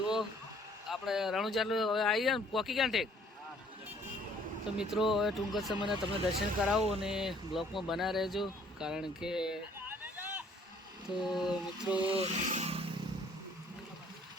આપણે રણુજા હવે આવી ગયા ને પોકી ગયા ઠેક. તો મિત્રો હવે ટૂંક જ સમયના તમને દર્શન કરાવું અને બ્લોકમાં બના રહેજો. કારણ કે તો મિત્રો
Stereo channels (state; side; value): normal; both; correlation 0.60